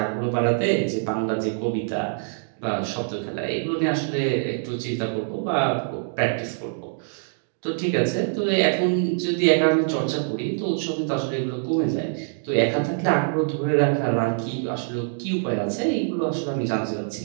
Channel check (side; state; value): left; silent; digital silence